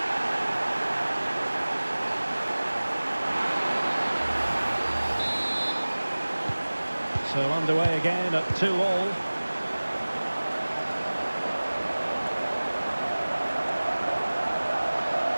So underway again at 2-2.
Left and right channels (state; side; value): inverted; both; correlation -1.00